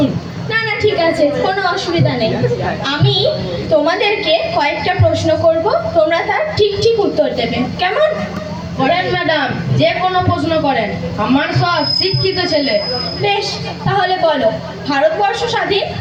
না না, ঠিক আছে, কোনো অসুবিধা নেই। আমি তোমাদেরকে কয়েকটা প্রশ্ন করব, তোমরা তার ঠিক ঠিক উত্তর দেবে, কেমন? করেন ম্যাডাম, যে কোনো প্রশ্ন করেন, আমার সব শিক্ষিত ছেলে। বেশ, তাহলে বলো, ভারতবর্ষ স্বাধীন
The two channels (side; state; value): both; identical; correlation 1.00